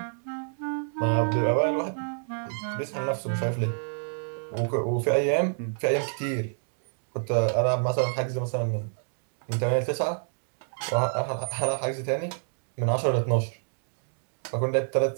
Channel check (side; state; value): left; silent; digital silence